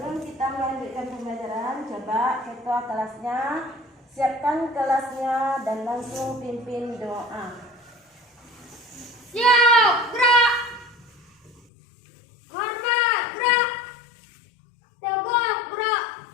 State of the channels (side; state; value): right; drops out; at 11.6 s